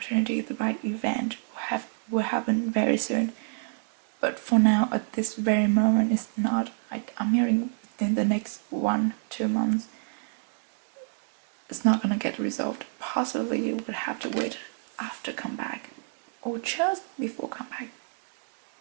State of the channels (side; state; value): left; silent; digital silence